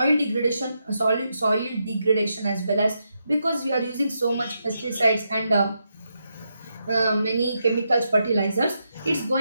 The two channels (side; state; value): both; inverted; correlation -0.83